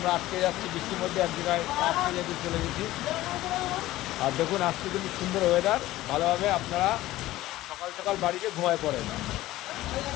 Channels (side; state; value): right; quieter; 16.2 dB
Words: আটকে যাচ্ছি বৃষ্টির মধ্যে, এক জায়গায় আটকে যেতে চলে গেছি। আর দেখুন আজকে কিন্তু সুন্দর ওয়েদার, ভালোভাবে আপনারা সকাল সকাল বাড়িতে ঘুমায় পড়েন।